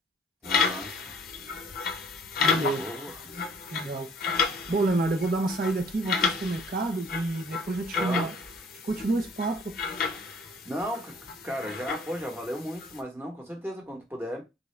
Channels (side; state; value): both; normal; correlation 0.56